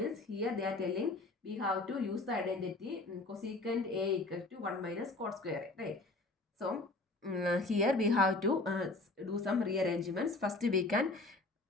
here they are telling we have to use the identity cosecant A equal to 1 minus cot square A, right? So here we have to do some rearrangements. First we can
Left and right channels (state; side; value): quieter; right; 3.1 dB